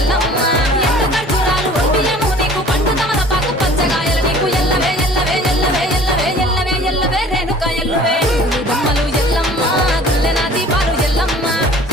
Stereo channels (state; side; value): normal; both; correlation 0.49